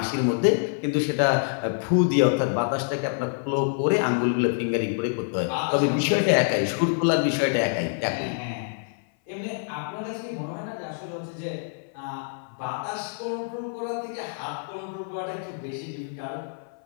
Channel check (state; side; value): silent; right; 58 dB below the other